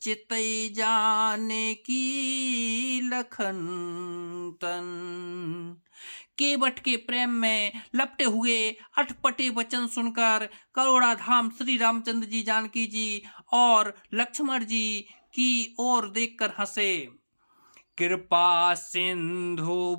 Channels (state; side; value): inverted; both; correlation -1.00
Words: चितई जाने की लखन तन। केवट के प्रेम में लपटे हुए अटपटे वचन सुनकर करुणाधाम श्री रामचंद्र जी, जानकी जी और लक्ष्मण जी की ओर देखकर हंसे। कृपा सिंधु